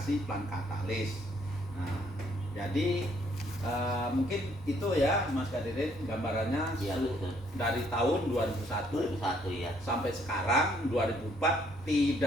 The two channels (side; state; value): both; normal; correlation 0.66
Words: Plant Katalis. Nah, jadi mungkin itu ya Mas Kadirin gambarannya Ya, dari tahun 2001 ya. sampai sekarang 2004